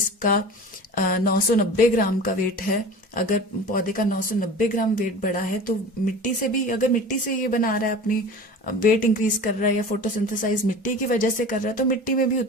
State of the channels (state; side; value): normal; both; correlation 0.37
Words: 990 ग्राम का वेट है, अगर पौधे का 990 ग्राम वेट बढ़ा है तो मिट्टी से भी, अगर मिट्टी से ये बना रहा है, अपनी वेट इंक्रीज कर रहा है या फोटोसिंथेसाइज मिट्टी की वजह से कर रहा है, तो मिट्टी में भी